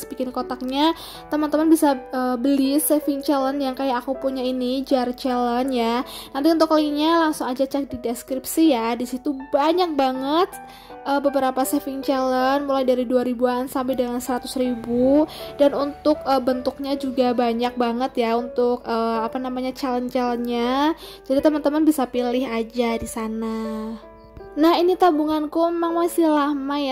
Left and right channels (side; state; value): both; identical; correlation 1.00